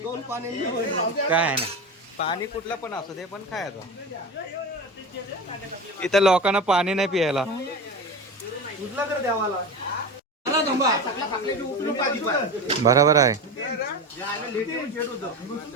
काय ना पाणी कुठलं पण असू दे, पण खायचं. इथं लोकांना पाणी नाही पियायला. बरोबर आहे.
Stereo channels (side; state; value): both; normal; correlation 0.26